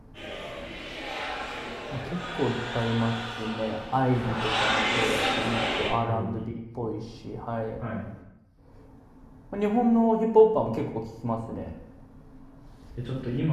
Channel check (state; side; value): identical; both; correlation 1.00